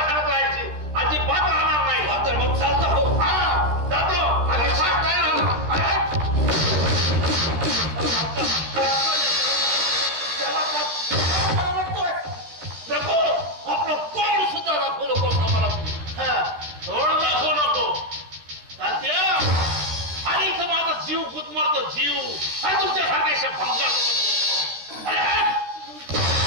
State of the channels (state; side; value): late; left; 13 ms